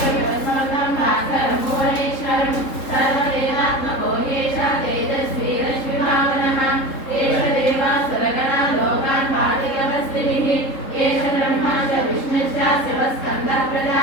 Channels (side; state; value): right; late; 3.7 ms